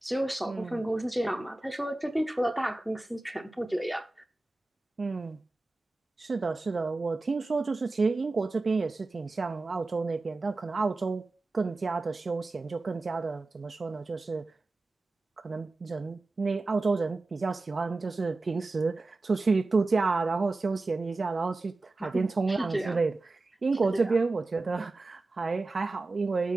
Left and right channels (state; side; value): quieter; left; 3.2 dB